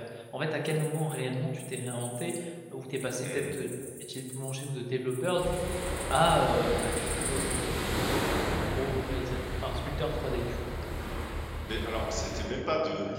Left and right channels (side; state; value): both; identical; correlation 1.00